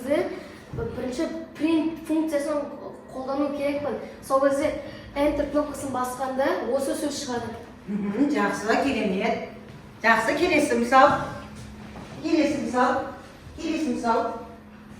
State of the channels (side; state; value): both; identical; correlation 1.00